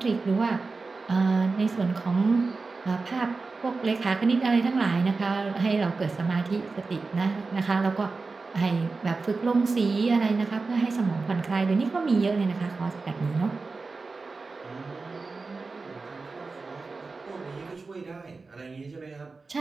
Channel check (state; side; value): quieter; left; 4.0 dB